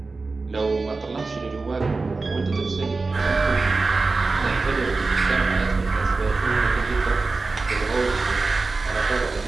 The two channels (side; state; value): left; quieter; 3.8 dB